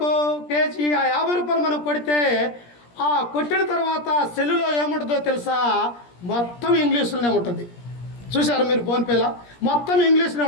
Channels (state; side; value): late; right; 17 ms